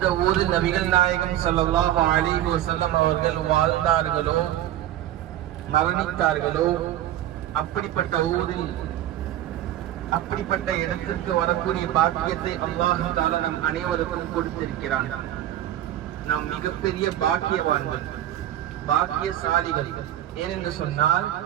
ஊரில் நபிகள் நாயகம் ஸல்லல்லாஹு அலைஹி வஸல்லம் அவர்கள் வாழ்ந்தார்களோ மரணித்தார்களோ அப்படிப்பட்ட ஊரில் அப்படிப்பட்ட இடத்திற்கு வரக்கூடிய பாக்கியத்தை அல்லாஹ் தஆலா நம் அனைவருக்கும் கொடுத்திருக்கிறான். நாம் மிகப்பெரிய பாக்கியவான்கள், பாக்கியசாலிகள். ஏனென்று சொன்னால்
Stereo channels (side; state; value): left; quieter; 12.8 dB